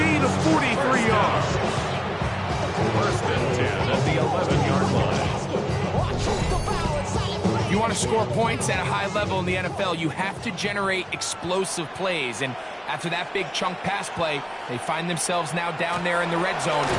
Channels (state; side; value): identical; both; correlation 1.00